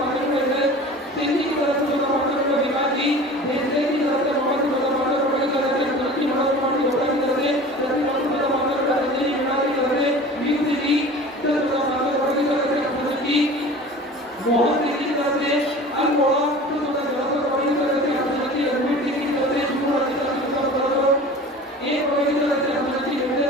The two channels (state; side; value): normal; both; correlation 0.39